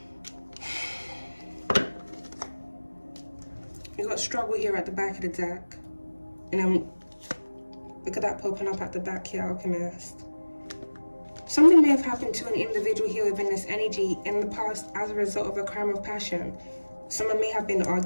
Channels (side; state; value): both; inverted; correlation -1.00